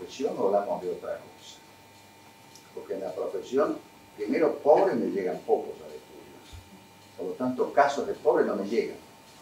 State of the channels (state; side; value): identical; both; correlation 1.00